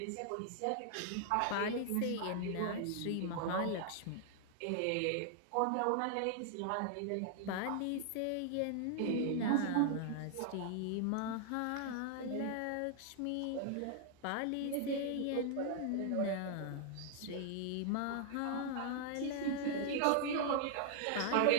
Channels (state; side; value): different; both; correlation 0.00